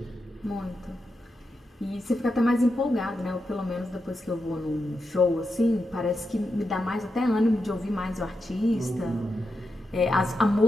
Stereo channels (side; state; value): both; normal; correlation 0.87